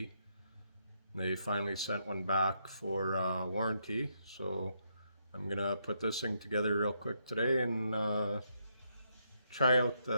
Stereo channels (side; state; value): both; inverted; correlation -0.77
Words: They finally sent one back for warranty, so I'm gonna put this thing together real quick today and try out